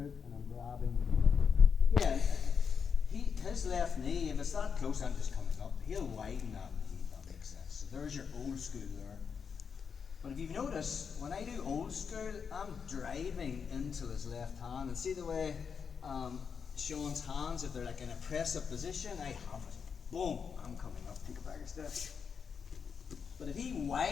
and I'm grabbing. Again, his left knee, if it's that close, I'm just coming up. He'll widen that knee, if that makes sense. So there's your old school there. But if you've noticed, when I do old school, I'm driving into his left hand. And see the way Sean's hands, if they're like in a press-up position, I have it. Boom, I'm coming up. Take it back a step. But if he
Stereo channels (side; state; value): right; quieter; 6.4 dB